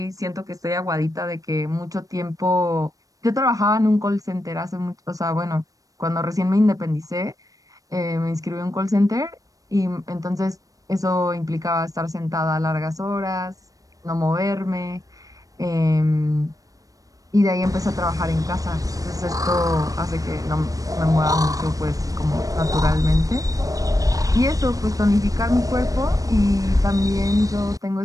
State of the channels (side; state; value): left; late; 0.17 ms